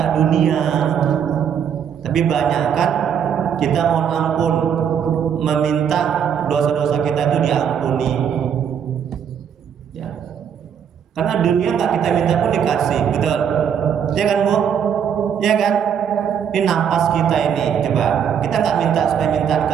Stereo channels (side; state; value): left; quieter; 8.1 dB